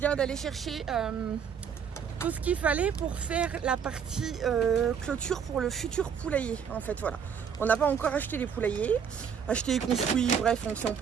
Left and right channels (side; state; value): left; quieter; 7.3 dB